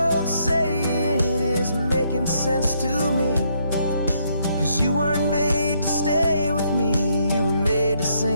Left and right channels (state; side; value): inverted; both; correlation -0.73